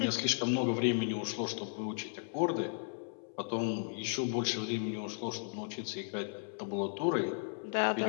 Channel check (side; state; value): right; silent; 54 dB below the other